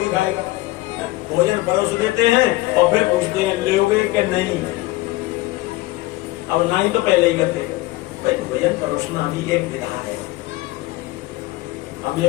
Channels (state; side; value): quieter; right; 19.6 dB